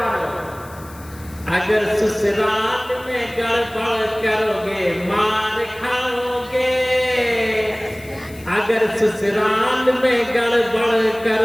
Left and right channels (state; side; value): noise; left; hiss, 22 dB below the sound